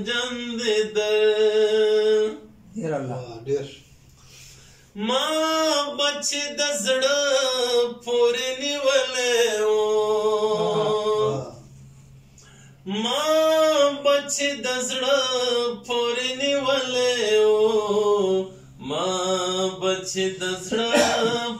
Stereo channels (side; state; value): both; identical; correlation 1.00